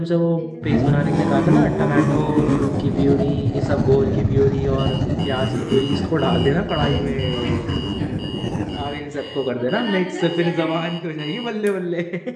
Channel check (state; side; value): identical; both; correlation 1.00